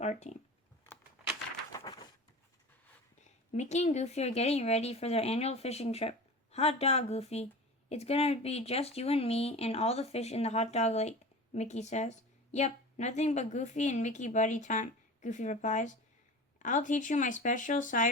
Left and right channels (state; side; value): normal; both; correlation 0.35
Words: team. Mickey and Goofy are getting ready for their annual fishing trip. Hot dog, Goofy. It's going to be just you and me and all the fish in the hot dog lake, Mickey says. Yep, nothing but Goofy and Mickey buddy time, Goofy replies. I'll teach you my special